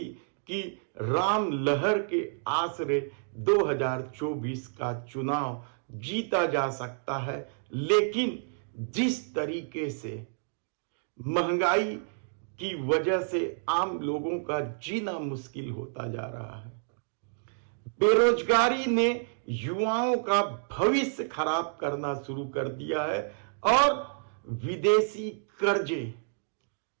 कि राम लहर के आसरे 2024 का चुनाव जीता जा सकता है, लेकिन जिस तरीके से महंगाई की वजह से आम लोगों का जीना मुश्किल होता जा रहा है, बेरोजगारी ने युवाओं का भविष्य खराब करना शुरू कर दिया है और विदेशी कर्जे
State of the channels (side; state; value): left; silent; digital silence